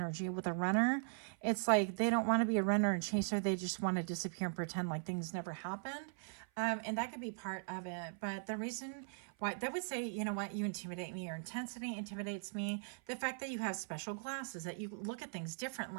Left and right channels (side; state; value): left; silent; 51 dB below the other